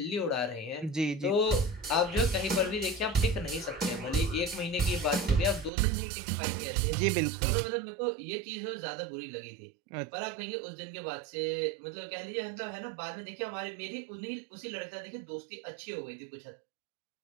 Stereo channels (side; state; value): left; drops out; at 5.7 s